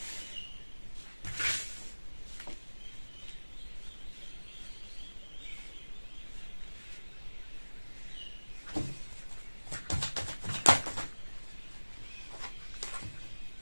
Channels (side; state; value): both; inverted; correlation -1.00